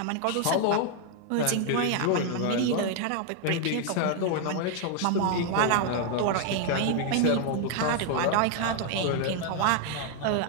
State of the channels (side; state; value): both; different; correlation 0.00